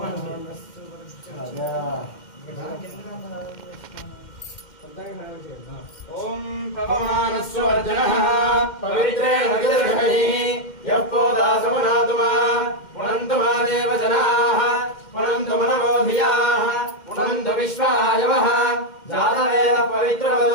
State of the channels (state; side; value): late; right; 2.1 ms